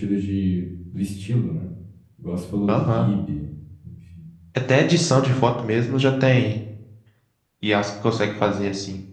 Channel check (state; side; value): identical; both; correlation 1.00